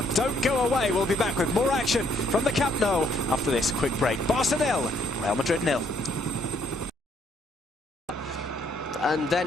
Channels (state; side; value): normal; both; correlation 0.68